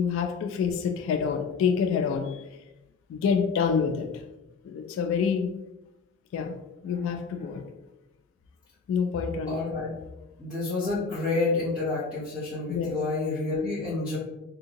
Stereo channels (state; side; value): quieter; right; 4.9 dB